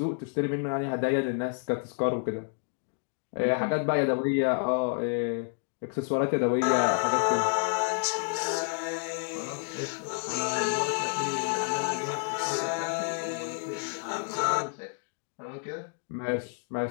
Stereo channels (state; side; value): silent; right; 58 dB below the other